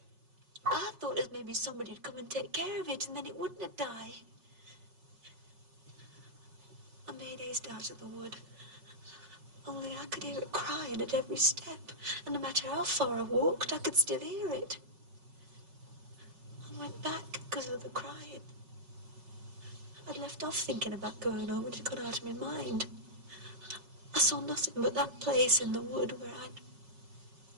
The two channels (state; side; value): late; left; 5.4 ms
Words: I thought as maybe somebody'd come and take care of it, and then it wouldn't have died. I made haste out of the wood. Only I could hear it crying at every step, and no matter how far I walked, I could still hear it. I went back because of the crying. I'd left off thinking about going home, and it got out of my mind. I saw nothing but that place in the wood where I'd